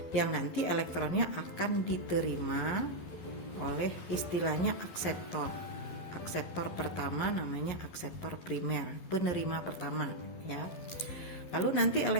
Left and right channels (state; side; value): late; right; 12 ms